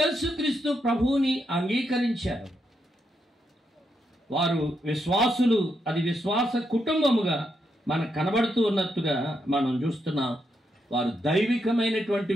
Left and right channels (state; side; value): normal; both; correlation 0.81